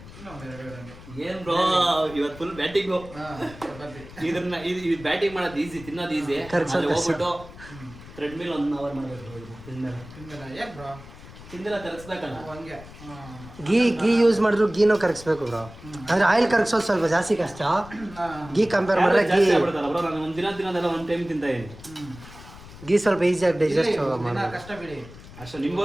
ಇನ್ನೂ ಒಂದು 2 ಹಂಗೆ. ಏನ್ ಬ್ರೋ ಇವತ್ತು ಫುಲ್ ಬ್ಯಾಟಿಂಗು. ಚಪಾತಿ ಇದು ಬ್ಯಾಟಿಂಗ್ ಮಾಡೋದು ಈಸಿ, ತಿನ್ನೋದು ಈಸಿ. ಹೋಗ್ಬಿಟ್ಟು ಥ್ರೆಡ್ಮಿಲ್ 1 ಅವರ್ ಮಾಡಬೇಕು. ತಿಂದಿಲ್ಲ ಯಾಕೆ ಬ್ರೋ? ತಿಂದಿಲ್ಲ ಕರಗಿಸ್ಬೇಕಲ್ಲ. ಹಂಗೆ ಗೀ ಯೂಸ್ ಮಾಡಿದ್ರು ಗೀನೂ ಕರಗಿಸ್ಬೇಕು ಬ್ರೋ. ಅಂದ್ರೆ ಆಯಿಲ್ ಕರಗಿಸೋದು ಸ್ವಲ್ಪ ಜಾಸ್ತಿ ಕಷ್ಟ. ಗೀ ಕಂಪೇರ್ ಮಾಡಿದ್ರೆ ಗೀ ಬ್ರೋ ನಾನು ಒಂದಿನ ತಿನ್ನೋದೆಲ್ಲ ಒಂದು ಟೈಮ್ ತಿಂತ ಇದ್ದೀನಿ. ಗೀ ಸ್ವಲ್ಪ ಈಸಿಯಾಗಿ ಡೈಜೆಸ್ಟ್ ದಿನ ಕಷ್ಟ ಬಿಡಿ. ಅಷ್ಟು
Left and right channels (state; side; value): noise; left; rumble, 17 dB below the sound